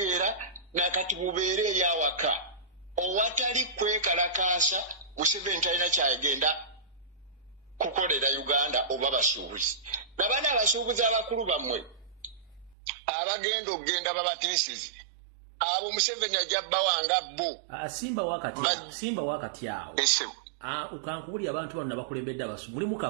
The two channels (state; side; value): drops out; left; at 12.8 s